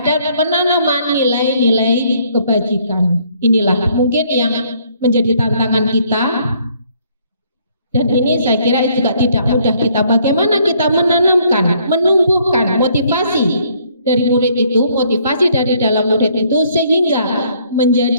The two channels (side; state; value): both; inverted; correlation -0.65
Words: penanaman nilai-nilai kebajikan. inilah mungkin yang menjadi tantangan kita. Dan ini saya kira juga tidak mudah kita. Bagaimana kita menanamkan, menumbuhkan motivasi dari murid itu, motivasi dari dalam murid itu sehingga